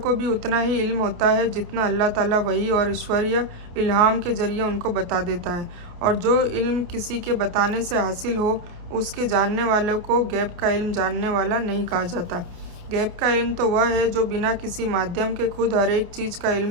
भी उतना ही इल्म होता है जितना अल्लाह ताला वही और ईश्वरीय इल्हाम के ज़रिए उनको बता देता है। और जो इल्म किसी के बताने से हासिल हो, उसके जानने वालों को गैब का इल्म जानने वाला नहीं कहा जाता। गैब का इल्म तो वह है जो बिना किसी माध्यम के खुद हर एक चीज़ का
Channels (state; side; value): late; left; 29 ms